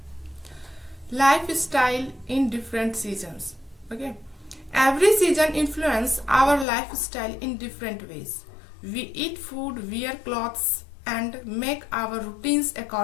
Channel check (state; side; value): drops out; right; at 6.7 s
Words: Lifestyle in different seasons. Okay, every season influence our lifestyle in different ways. We eat food, wear clothes and make our routines